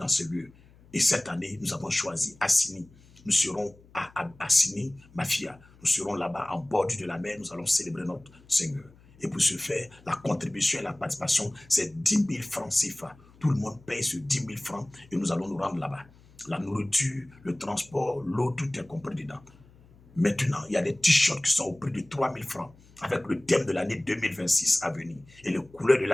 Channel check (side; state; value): left; noise; hum, 26 dB below the sound